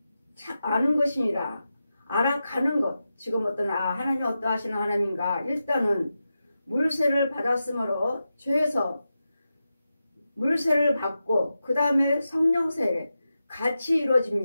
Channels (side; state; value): both; inverted; correlation -0.90